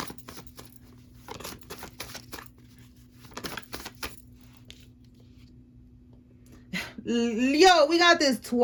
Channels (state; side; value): identical; both; correlation 1.00